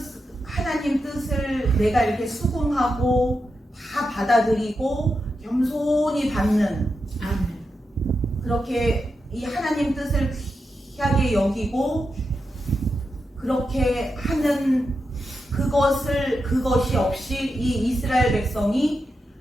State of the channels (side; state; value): both; normal; correlation 0.87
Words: 내가 이렇게 수긍하고 다 받아들이고 겸손히 받는 아멘. 그렇게 이 하나님 뜻을 귀하게 여기고 그렇게 하는 그것이 없이 이 이스라엘 백성이